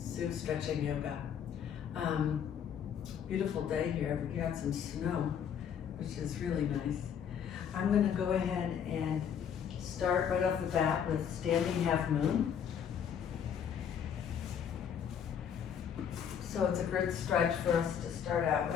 Stretching Yoga. Beautiful day here. We got some snow, which is really nice. I'm going to go ahead and start right off the bat with standing half moon. So it's a good stretch for us to start out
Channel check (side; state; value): right; quieter; 8.2 dB